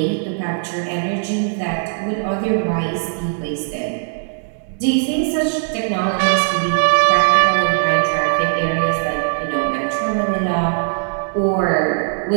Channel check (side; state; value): left; silent; digital silence